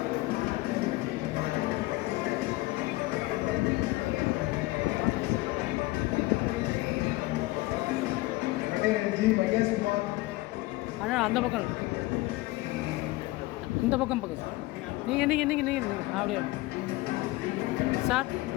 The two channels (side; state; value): right; quieter; 20.2 dB